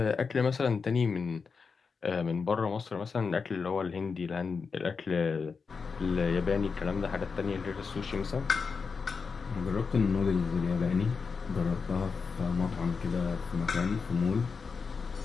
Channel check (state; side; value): quieter; right; 5.2 dB